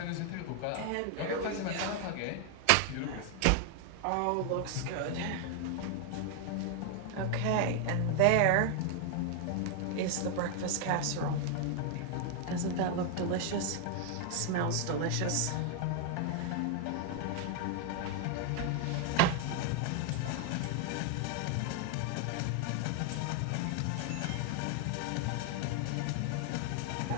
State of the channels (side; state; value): both; different; correlation 0.00